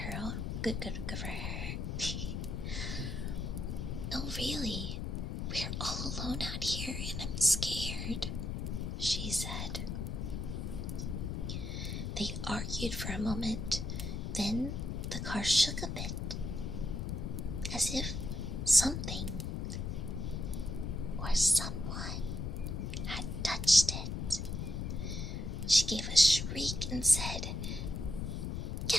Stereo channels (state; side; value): noise; left; rumble, 3 dB below the sound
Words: Good for her. "No, really. We're all alone out here and I'm scared," she said. They argued for a moment. Then the car shook a bit, as if something or someone had touched it. She gave a shriek and said,